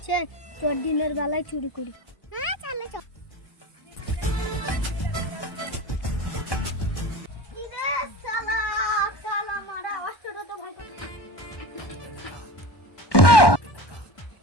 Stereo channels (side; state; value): right; late; 1.1 ms